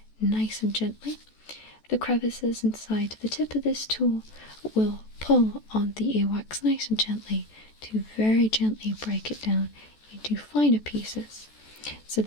nice and gently. The crevices inside the tip of this tool will pull on the earwax nice and gently to very gently break it down into finer pieces so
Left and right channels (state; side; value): late; right; 14 ms